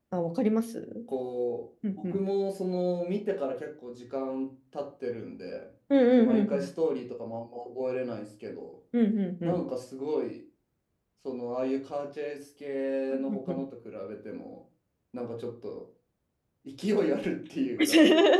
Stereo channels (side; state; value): both; identical; correlation 1.00